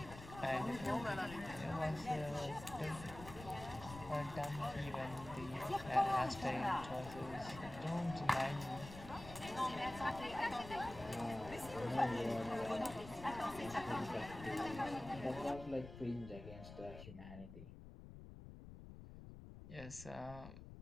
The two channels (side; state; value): left; noise; rumble, 13 dB below the sound